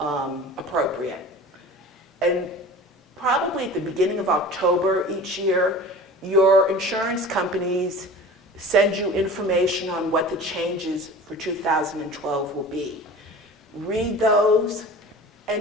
appropriate. And probably at the beginning of October each year, your insurance companies send you information on what the changes for 2012 will be. Read those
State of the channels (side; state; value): both; normal; correlation 0.39